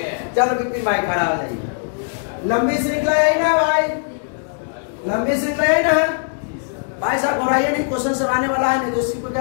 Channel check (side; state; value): right; silent; digital silence